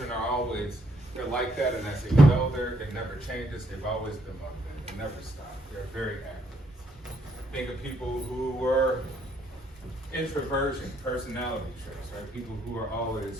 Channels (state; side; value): normal; both; correlation 0.72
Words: are always, they're like that, and as they get older, it never changes. They've always been motivated. They never stop. They're very active. Think of people who were introversion, personality traits, right? People who are